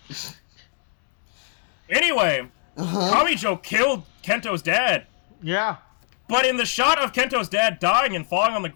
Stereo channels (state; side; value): silent; right; digital silence